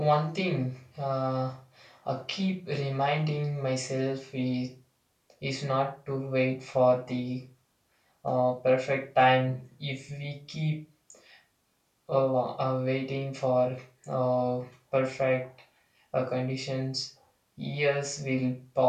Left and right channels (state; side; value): identical; both; correlation 1.00